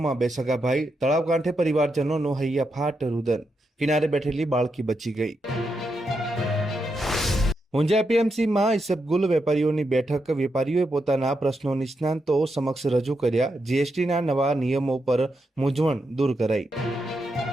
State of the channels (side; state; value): both; normal; correlation 0.84